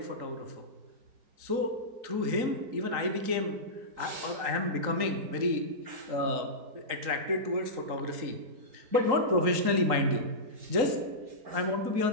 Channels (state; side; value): late; left; 3.9 ms